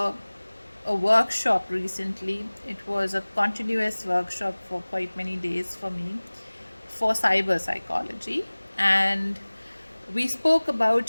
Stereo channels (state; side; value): inverted; both; correlation -1.00